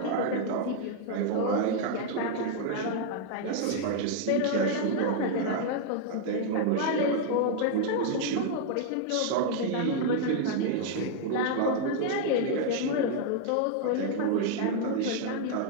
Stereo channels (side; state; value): both; different; correlation 0.00